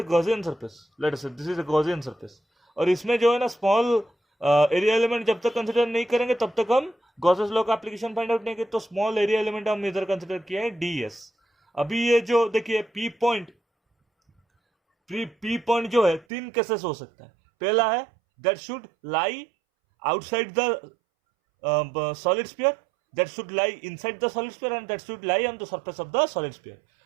Gaussian surface, let us say this is a Gaussian surface. और इसमें जो है ना स्मॉल एरिया एलिमेंट जब तक कंसीडर नहीं करेंगे तब तक हम गॉसेस लॉ का एप्लीकेशन फाइंड आउट नहीं करेंगे। तो स्मॉल एरिया एलिमेंट हम इधर कंसीडर किया है ds। अभी ये जो देखिए पी पॉइंट जो है तीन केसेस हो सकता है। पहला है that should lie outside the solid sphere, that should lie inside the solid sphere and that should lie on the surface of the solid sphere.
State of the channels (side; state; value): left; drops out; at 16.2 s